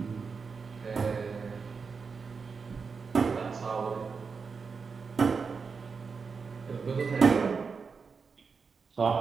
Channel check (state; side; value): quieter; left; 5.2 dB